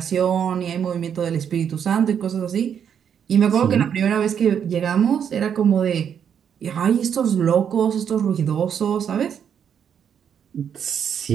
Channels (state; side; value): quieter; left; 8.1 dB